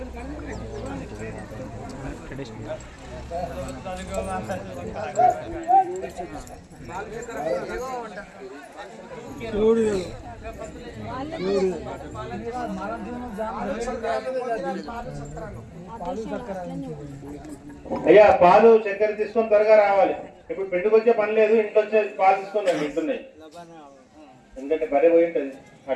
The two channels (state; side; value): identical; both; correlation 1.00